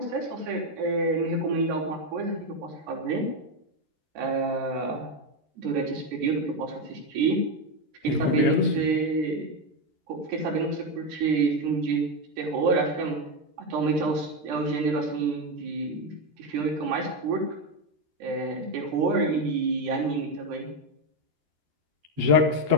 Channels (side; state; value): left; late; 13 ms